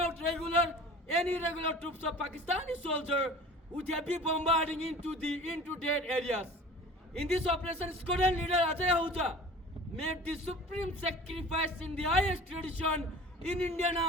regular and irregular troops of Pakistani soldiers with heavy bombarding into dead areas. In this operation, squadron leader Ajay Ahuja made the supreme sacrifice in the highest tradition in Indian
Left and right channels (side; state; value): both; normal; correlation 0.42